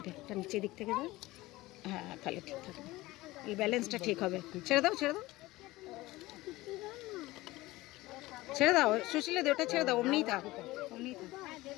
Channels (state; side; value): quieter; right; 19.1 dB